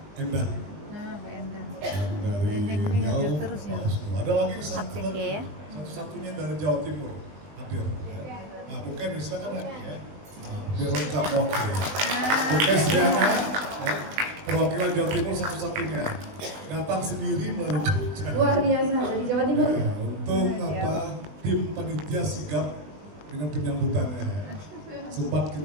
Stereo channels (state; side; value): late; left; 20 ms